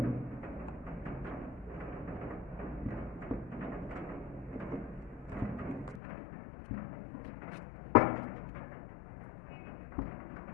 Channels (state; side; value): drops out; right; at 6.0 s